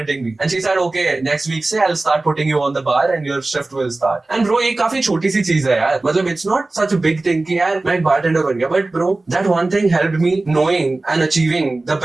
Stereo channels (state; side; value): quieter; left; 3.1 dB